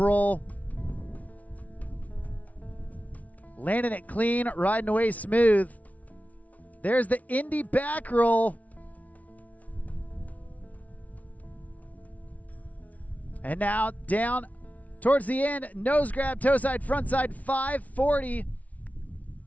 Landing it clean, riding away smooth. There's the Indy back roll. And now down towards the end, nose grab, toe side, front side, 540.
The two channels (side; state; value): right; late; 0.070 ms